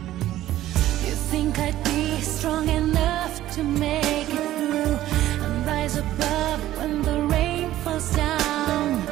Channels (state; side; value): quieter; left; 14.0 dB